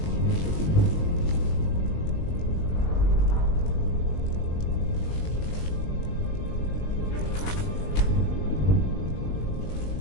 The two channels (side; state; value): right; late; 20 ms